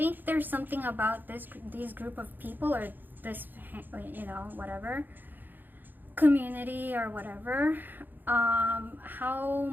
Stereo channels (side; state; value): left; late; 0.089 ms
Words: there's something about these group of people, or this, you know, whatever, community or whatever, how